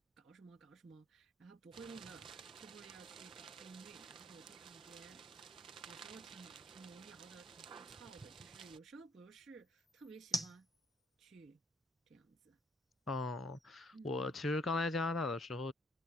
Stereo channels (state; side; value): normal; both; correlation 0.66